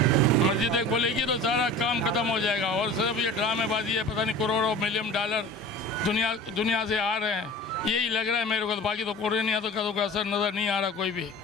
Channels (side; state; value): both; normal; correlation 0.39